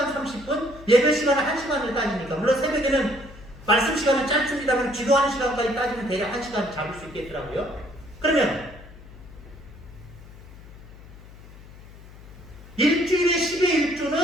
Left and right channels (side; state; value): left; noise; hum, 19 dB below the sound